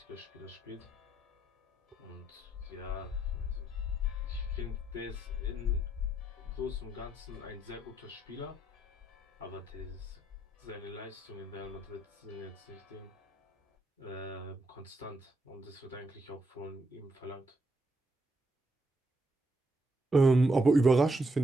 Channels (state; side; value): normal; both; correlation 0.76